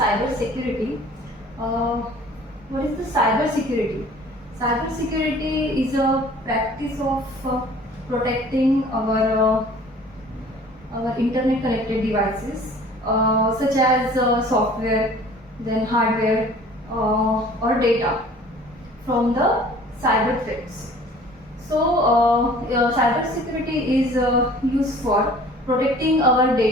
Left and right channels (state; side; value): normal; both; correlation 0.49